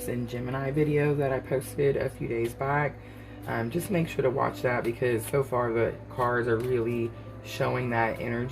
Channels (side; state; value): both; identical; correlation 1.00